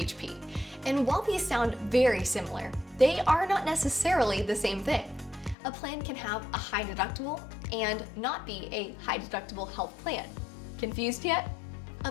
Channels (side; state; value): right; drops out; at 5.6 s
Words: And while these sound very similar, they are not necessarily the same thing. A plan can have a high deductible and not be a high deductible health plan. Confused yet? A